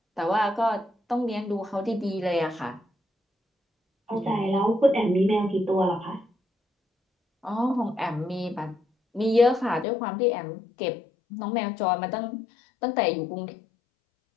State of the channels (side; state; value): right; drops out; at 9.9 s